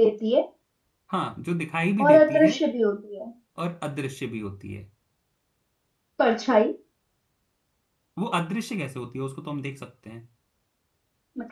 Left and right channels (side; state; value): both; identical; correlation 1.00